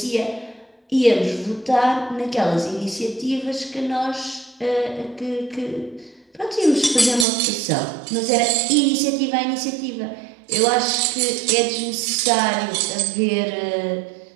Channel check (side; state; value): left; drops out; at 7.2 s